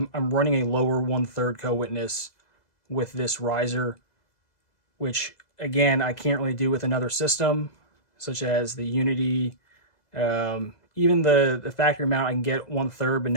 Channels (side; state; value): right; late; 2.0 ms